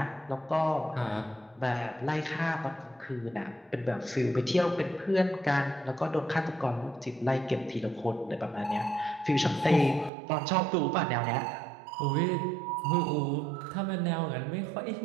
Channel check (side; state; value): left; drops out; at 10.1 s